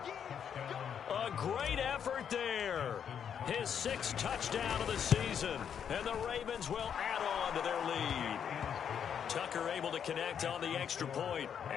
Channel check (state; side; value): quieter; right; 8.1 dB